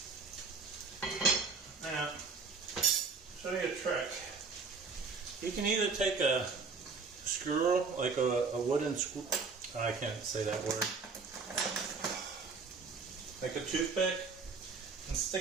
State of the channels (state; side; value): quieter; left; 4.6 dB